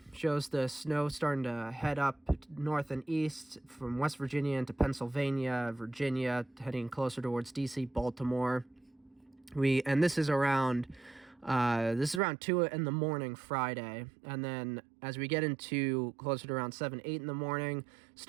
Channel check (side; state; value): left; drops out; at 12.2 s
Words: Shows the snow starting to head up north and east from West Virginia into Pennsylvania, Virginia, heading closer towards D.C., Baltimore. This is around 2 in the morning Friday, and then as we get into closer to around 7, 8 in the morning,